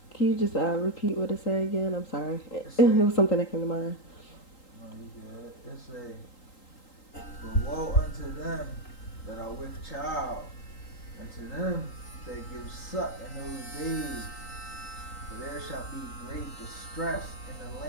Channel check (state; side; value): late; right; 3.8 ms